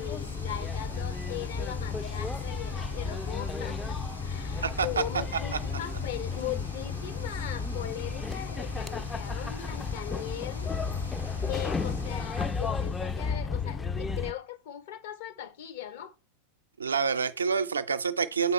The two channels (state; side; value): normal; both; correlation 0.07